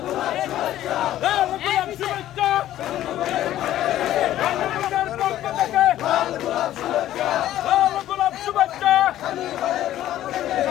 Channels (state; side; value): quieter; right; 13.1 dB